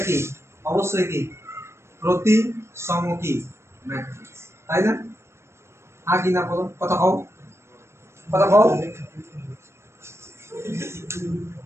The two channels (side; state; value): left; late; 0.13 ms